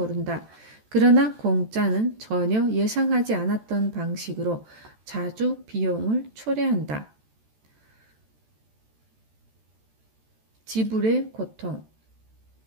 그러나 공짜는 전혀 예상하지 않았던 방식으로 자주 비용을 초래한다. 지불의 고통,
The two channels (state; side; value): late; left; 14 ms